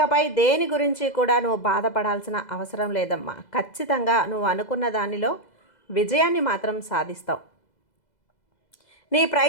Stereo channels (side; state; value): right; late; 2.0 ms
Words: దేని గురించి కూడా నువ్వు బాధపడాల్సిన అవసరం లేదమ్మా. ఖచ్చితంగా నువ్వు అనుకున్న దానిలో విజయాన్ని మాత్రం సాధిస్తావు. నీ